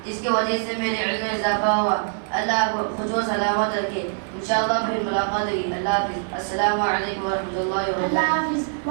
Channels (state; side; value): silent; left; 63 dB below the other